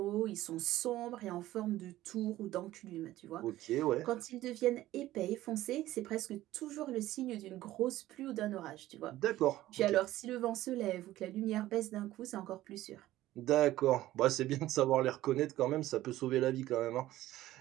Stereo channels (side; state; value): left; quieter; 15.3 dB